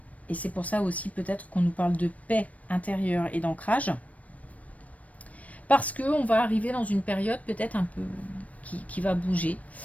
c'est pour ça aussi peut-être qu'on nous parle de paix intérieure et d'ancrage. Parce qu'on va arriver dans une période peut-être un peu qui va bouger.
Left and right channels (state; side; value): late; right; 0.068 ms